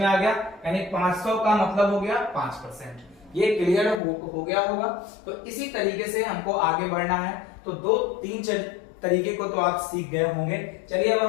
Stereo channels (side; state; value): right; drops out; at 4.0 s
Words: आ गया, यानी 500 का मतलब हो गया 5%। ये क्लियर हो गया होगा। तो इसी तरीके से हमको आगे बढ़ना है। तो 2-3 तरीके को तो आप सीख गए होंगे। चलिए अब